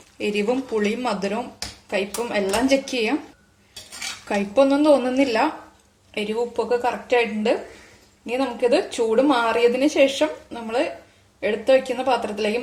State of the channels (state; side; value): identical; both; correlation 1.00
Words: എരിവും പുളിയും മധുരവും കയ്പും എല്ലാം ചെക്ക് ചെയ്യാം. കയ്പൊന്നും തോന്നുന്നില്ല, എരിവും ഉപ്പൊക്കെ കറക്റ്റ് ആയിട്ടുണ്ട്. ഇനി നമുക്കിത് ചൂട് മാറിയതിന് ശേഷം നമ്മൾ എടുത്തു വയ്ക്കുന്ന പാത്രത്തിലേക്ക്